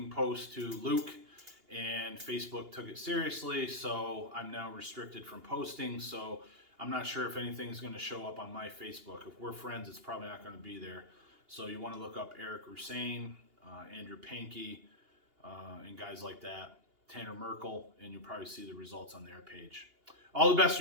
post to Luke, and Facebook took it seriously, so I'm now restricted from posting. So I'm not sure if anything's going to show up on my Facebook. If we're friends, it's probably not going to be there. So you want to look up Eric Rusain, Andrew Pankey, and guys like that, Tanner Merkel, and you'll probably see the results on their page. All the best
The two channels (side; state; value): left; late; 2.8 ms